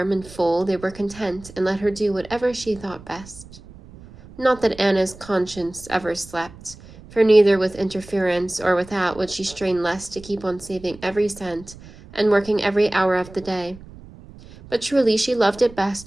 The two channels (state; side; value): noise; right; rumble, 19 dB below the sound